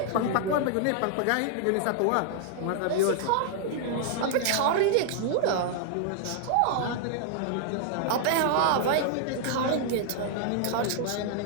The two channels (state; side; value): different; both; correlation -0.01